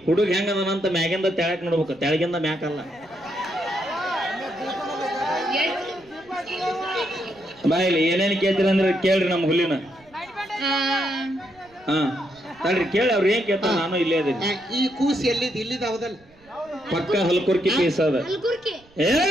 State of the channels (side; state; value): right; noise; rumble, 29 dB below the sound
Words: ಹುಡುಗ ಹೆಂಗದನಂತ ಮ್ಯಾಗಿಂದ ತೆಳಕ್ ನೋಡ್ಬೇಕು, ತೆಳಗಿಂದ ಮ್ಯಾಕಲ್ಲ. ಬಾಯಿಲಿ ಏನೇನ್ ಕೇಳ್ತೀರ ಅಂದ್ರೆ ಕೇಳ್ರಿ ನಮ್ಮ ಹುಲಿನ. ತಡ್ರಿ ಕೇಳಿ ಅವ್ರು ಏನ್ ಕೇಳ್ತಾರ. ನಾನು ಇಲ್ಲೇ ಅದೀನಿ. ಈ ಕೂಸ್ ಎಲ್ಲಿದ್? ಇಲ್ಲಿದ ಹೌದಲ್ಲ? ಪಕ್ಕ ಹಲ್ಕುರ್ಕಿ ಪೀಸ್ ಅದ. ಏ